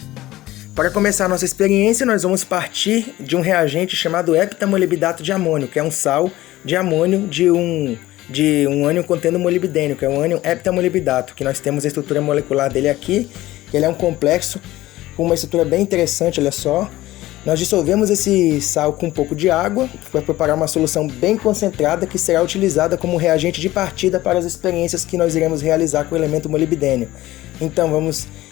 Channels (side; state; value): right; quieter; 16.5 dB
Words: Para começar a nossa experiência, nós vamos partir de um reagente chamado heptamolibdato de amônio, que é um sal de amônio de um ânion contendo molibdênio, que é um ânion heptamolibdato, que nós temos a estrutura molecular dele aqui. Ele é um complexo com uma estrutura bem interessante, olha só. Nós dissolvemos esse sal com um pouco de água para preparar uma solução bem concentrada que será utilizada como reagente de partida para as experiências que nós iremos realizar com o elemento molibdênio. Então vamos